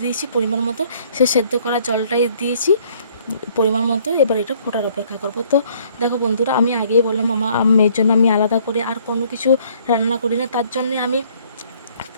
দিয়েছি পরিমাণ মতো, সে সেদ্ধ করা জলটাই দিয়েছি পরিমাণ মতো। এবার এটা ফোটার অপেক্ষা করব। তো দেখো বন্ধুরা, আমি আগেই বললাম আমার মেয়ের জন্য আমি আলাদা করে আর কোনো কিছু রান্না করি না। তার জন্যে আমি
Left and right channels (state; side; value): inverted; both; correlation -0.61